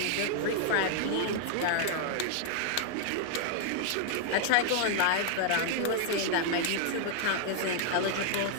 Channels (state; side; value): different; both; correlation 0.00